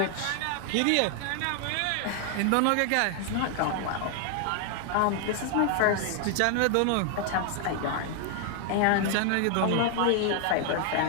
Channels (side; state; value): both; different; correlation 0.00